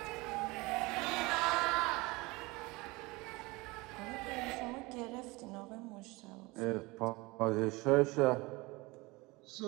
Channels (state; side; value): quieter; left; 23.6 dB